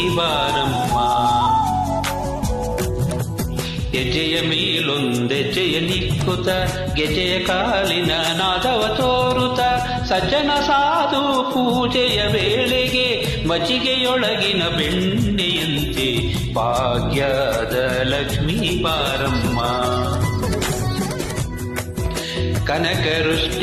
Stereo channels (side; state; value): both; identical; correlation 1.00